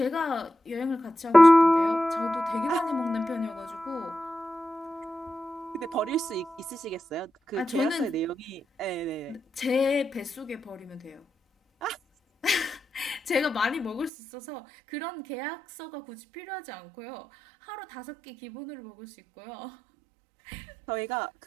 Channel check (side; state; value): left; drops out; at 14.1 s